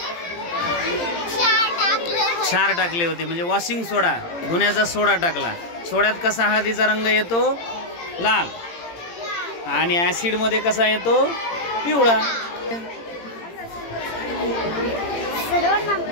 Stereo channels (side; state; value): right; late; 18 ms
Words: क्षार टाकली होती म्हणजे वॉशिंग सोडा, धुण्याचा सोडा टाकला। सोड्यात कसा हळदीचा रंग येतो? लाल। आणि ऍसिड मध्ये कसा येतो? पिवळा।